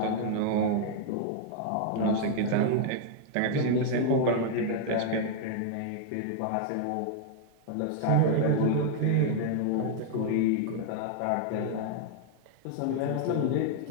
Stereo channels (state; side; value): different; both; correlation -0.01